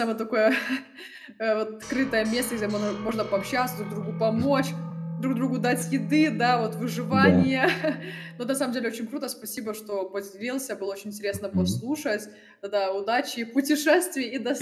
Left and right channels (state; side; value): identical; both; correlation 1.00